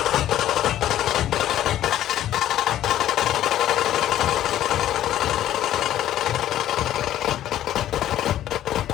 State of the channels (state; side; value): quieter; right; 12.4 dB